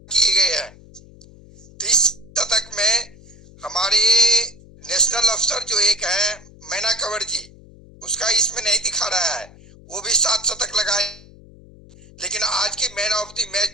गए हैं। 30 शतक में हमारे नेशनल अफसर जो एक है मैना कंवर जी, उसका इसमें नहीं दिखा रहा है, वो भी 7 शतक लगाए। लेकिन आज की मैन ऑफ द मैच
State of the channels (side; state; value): left; noise; hum, 22 dB below the sound